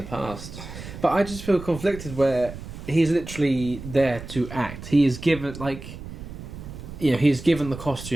past. But I just feel conflicted where... He's literally there to act. He is given, he's given the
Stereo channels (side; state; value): right; noise; rumble, 12 dB below the sound